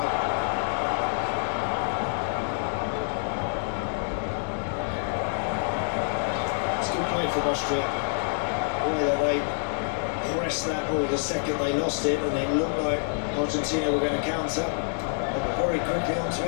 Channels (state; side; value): silent; right; digital silence